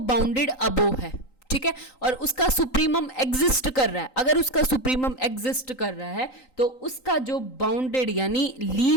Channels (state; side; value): late; right; 3.9 ms